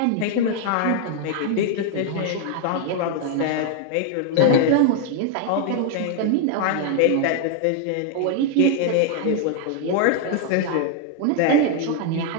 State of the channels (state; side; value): different; both; correlation 0.00